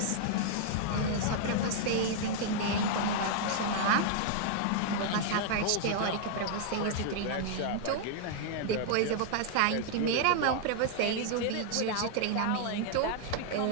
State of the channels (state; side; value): different; both; correlation -0.01